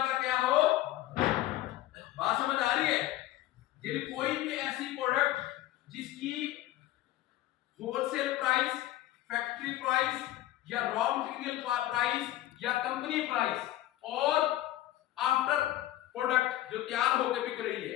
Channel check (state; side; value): quieter; right; 14.9 dB